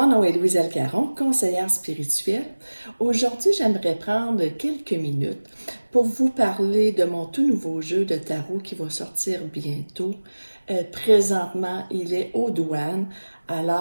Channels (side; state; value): both; inverted; correlation -1.00